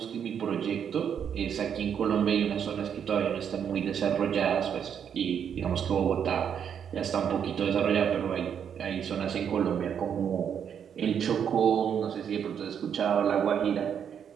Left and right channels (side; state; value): left; quieter; 8.1 dB